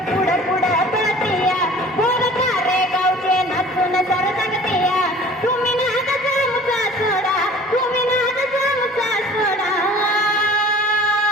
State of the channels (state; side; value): normal; both; correlation 0.47